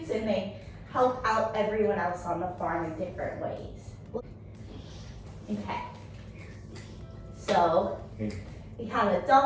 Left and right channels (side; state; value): both; identical; correlation 1.00